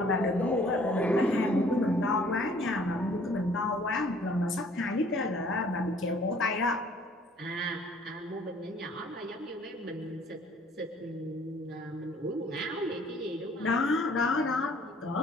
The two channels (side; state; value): both; normal; correlation 0.57